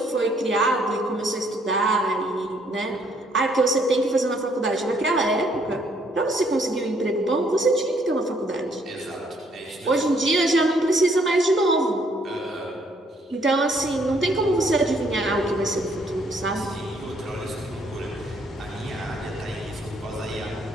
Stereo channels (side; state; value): both; normal; correlation 0.67